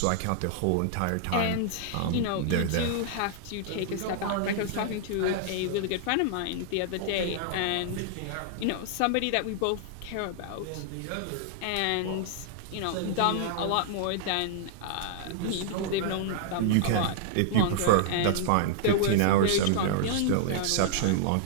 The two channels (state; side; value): different; both; correlation -0.01